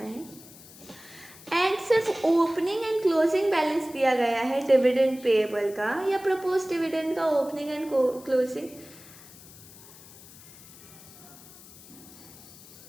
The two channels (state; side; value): noise; left; hiss, 20 dB below the sound